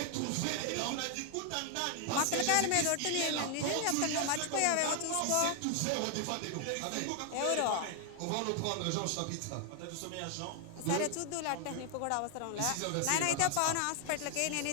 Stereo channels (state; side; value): different; both; correlation 0.00